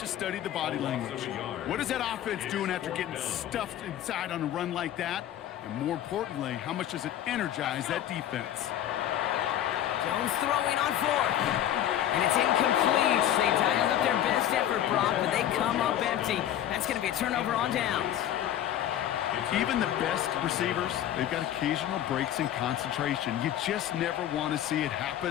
study the body language. What is that offense doing after getting stuffed inside on a run like that? And more importantly, how much does it energize that defense? Jones throwing on 4th. And it's incomplete. They dialed up their best effort, Brock, but they come up empty. That's going to be a turnover on downs. Even the best receivers, they've got occasional breaks in concentration. You just never want to see it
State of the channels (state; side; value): quieter; right; 11.5 dB